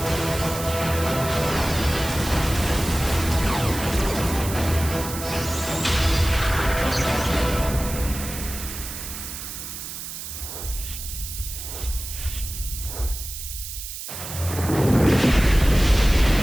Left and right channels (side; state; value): right; noise; hiss, 9 dB below the sound